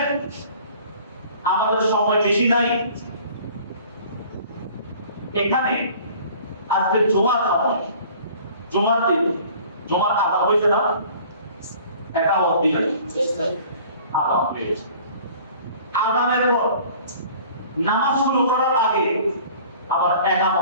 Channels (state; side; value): inverted; both; correlation -0.49